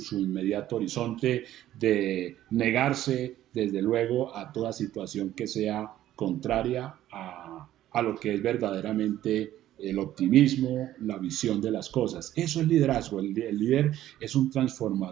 inmediato horizonte, de negarse desde luego a toda situación que sea contraria a lo que es verdaderamente el optimismo, la visión de las cosas. Eso es liderazgo. El líder es un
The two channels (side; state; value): left; quieter; 13.2 dB